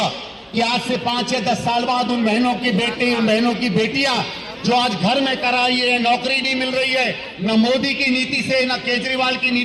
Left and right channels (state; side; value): identical; both; correlation 1.00